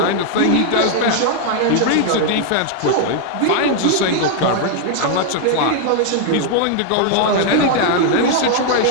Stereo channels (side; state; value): both; different; correlation 0.00